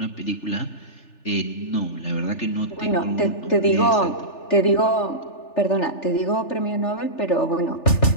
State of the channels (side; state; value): right; late; 3.4 ms